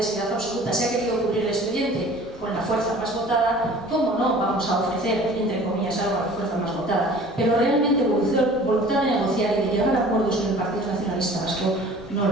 seriedad absoluta. Se ha querido cubrir el expediente con la fuerza más votada. ¿Cómo no vamos a ofrecer, entre comillas, algo a la fuerza más votada? Pero realmente voluntad de negociar y de llegar a acuerdos con el Partido Nacionalista Vasco no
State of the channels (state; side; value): normal; both; correlation 0.46